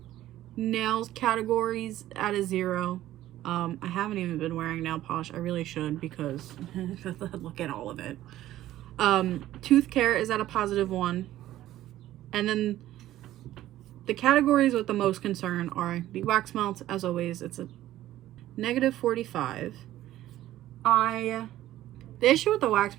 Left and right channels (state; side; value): quieter; left; 14.0 dB